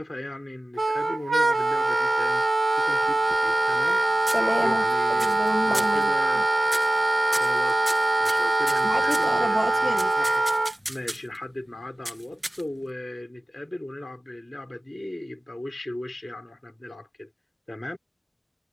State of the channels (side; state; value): both; normal; correlation 0.97